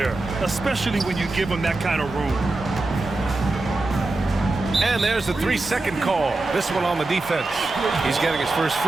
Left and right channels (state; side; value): quieter; left; 3.1 dB